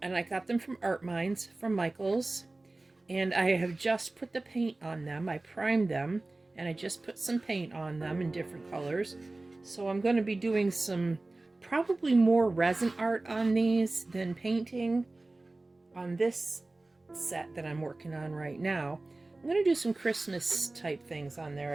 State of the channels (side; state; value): left; quieter; 3.0 dB